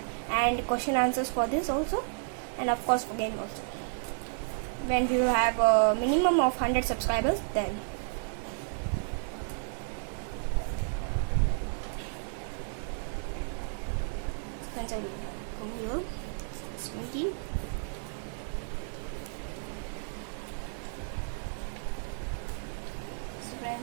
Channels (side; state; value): left; silent; digital silence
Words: and question answers for this also, and of course for game also. When we will have a minimum of 100 subscribers, then friends, I will come here. 17.